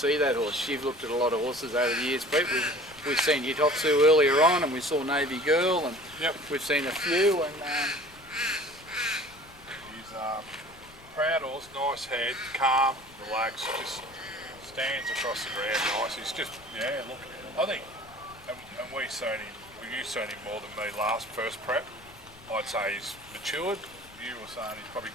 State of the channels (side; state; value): left; noise; rumble, 23 dB below the sound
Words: that horse? You've looked at a lot of horses over the years, Pete. We've seen Hitotsu earlier on, and we saw Navy Girl, and we've seen a few. And he's proud horse, nice head, calm, relaxed, just stands across the ground nice. He's just, look, I think, and you've seen him more than me first prep. I'd say he's matured. You were saying he's probably